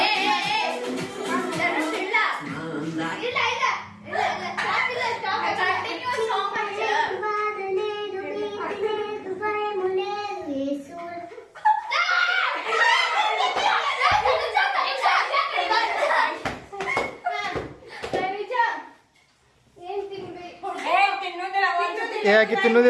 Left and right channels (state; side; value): identical; both; correlation 1.00